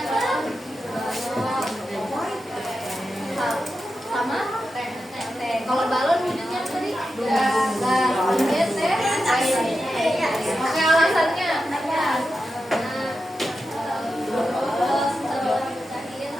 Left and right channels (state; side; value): normal; both; correlation 0.90